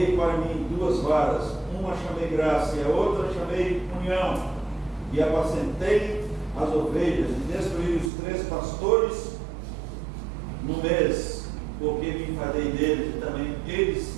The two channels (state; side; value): drops out; left; at 8.1 s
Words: para mim 2 varas, uma chamei graça e a outra chamei união, e apacentei as ovelhas, e destruí os 3 pastores no mês, porque me enfadei deles, e também eles